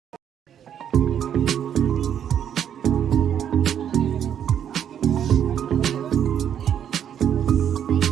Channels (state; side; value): quieter; left; 9.3 dB